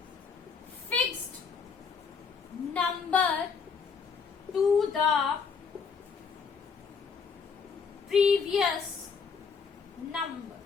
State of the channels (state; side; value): quieter; right; 5.7 dB